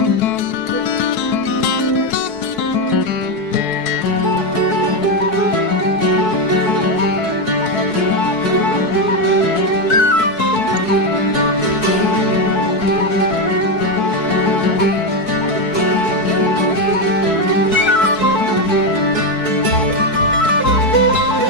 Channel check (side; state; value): right; late; 4.6 ms